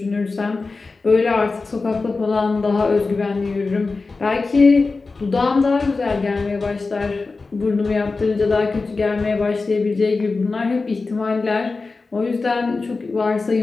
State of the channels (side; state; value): right; quieter; 3.9 dB